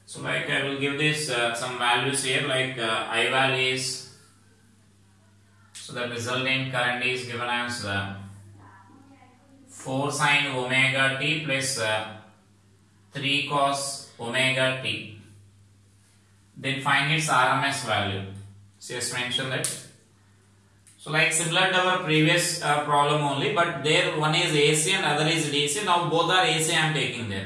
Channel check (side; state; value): both; identical; correlation 1.00